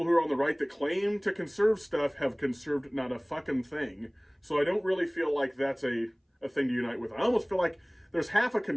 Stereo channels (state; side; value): identical; both; correlation 1.00